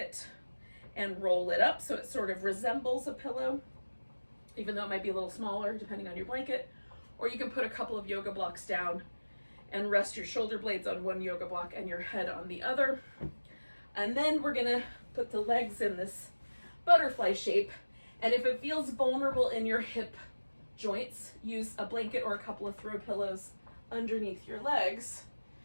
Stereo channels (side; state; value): both; inverted; correlation -1.00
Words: and roll it up so it sort of resembles a pillow, even though it might be a little smaller depending on your blanket. Or you can put a couple of yoga blocks down and rest your shoulder blades on one yoga block and your head on the other. And then we're gonna put the legs in this butterfly shape. And if it feels vulnerable in your hip joints, use a blanket or a couple of throw pillows underneath your legs